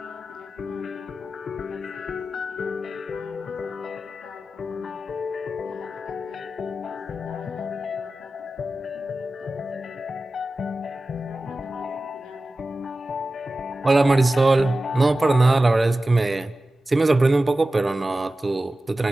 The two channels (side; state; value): both; normal; correlation 0.94